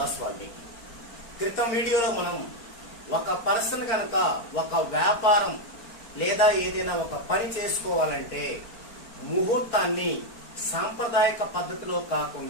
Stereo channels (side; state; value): right; late; 4.4 ms